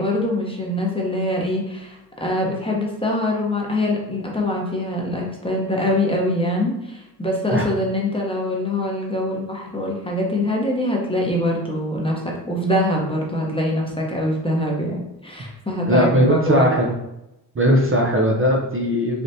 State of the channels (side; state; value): both; normal; correlation 0.34